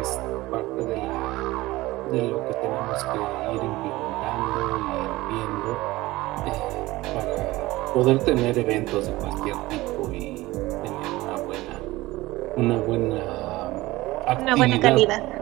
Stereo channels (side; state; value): left; quieter; 18.9 dB